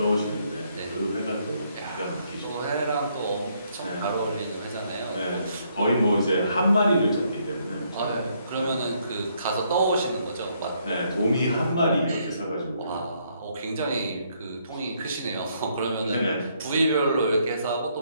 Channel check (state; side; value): inverted; both; correlation -0.71